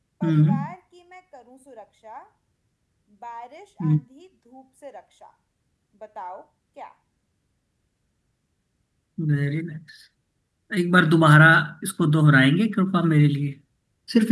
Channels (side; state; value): both; identical; correlation 1.00